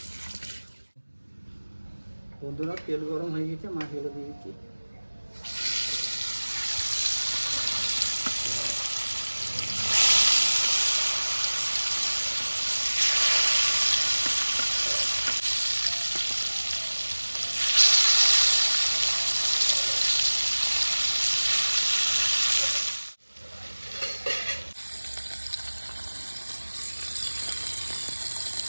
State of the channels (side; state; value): both; inverted; correlation -1.00